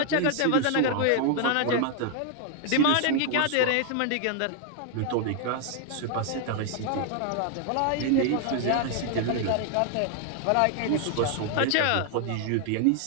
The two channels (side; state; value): both; different; correlation 0.00